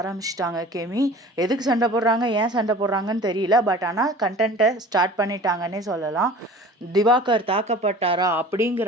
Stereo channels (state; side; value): normal; both; correlation 0.42